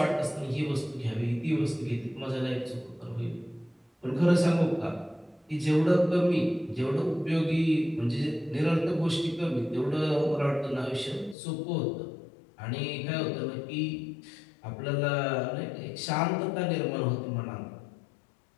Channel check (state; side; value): drops out; right; at 11.4 s